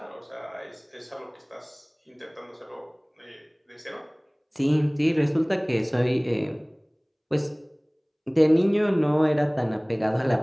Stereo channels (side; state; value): both; identical; correlation 1.00